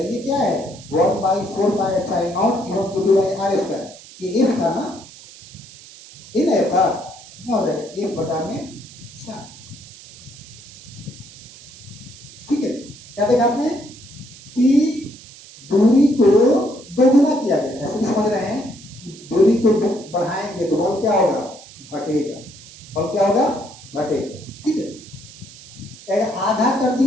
ये क्या है 1/4π Q1 Q2/r², ये F था ना, ये ना F था, क्या हो जाएगा 1 बटा में 4, ठीक है। क्या देखा आपने कि दूरी को दोगुना किया गया, ऐसे भी समझ रहे हैं कि दूरी को बढ़ाएंगे तो बल क्या होगा घटेगा, बल क्या होगा घटेगा, ठीक है। अगर आधा कर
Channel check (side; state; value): right; noise; hiss, 19 dB below the sound